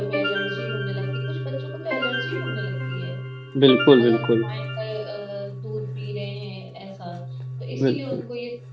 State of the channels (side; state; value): both; identical; correlation 1.00